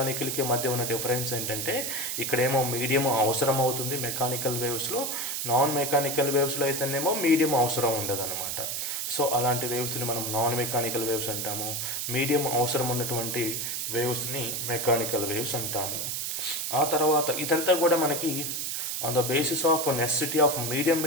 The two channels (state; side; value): noise; right; hiss, 2 dB below the sound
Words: మధ్య ఉన్న డిఫరెన్స్ ఏంటంటే ఇక్కడేమో మీడియం అవసరం అవుతుంది మెకానికల్ వేవ్స్లో, నాన్ మెకానికల్ వేవ్స్లో అయితేనేమో మీడియం అవసరం ఉండదన్నమాట. సో అలాంటి వేవ్స్ని మనం నాన్ మెకానికల్ వేవ్స్ అంటాము. మీడియం అవసరం ఉన్నటువంటి వేవ్స్ని మెకానికల్ వేవ్స్ అంటాము. ఆ తర్వాత ఇదంతా కూడా మనకి on the basis of necessity of medium